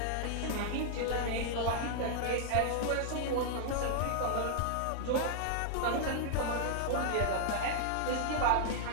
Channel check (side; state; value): both; different; correlation -0.01